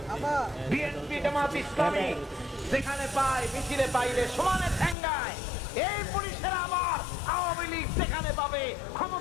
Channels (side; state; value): right; drops out; at 5.0 s